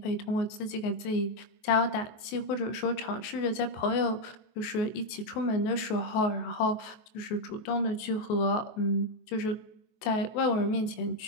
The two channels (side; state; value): right; late; 23 ms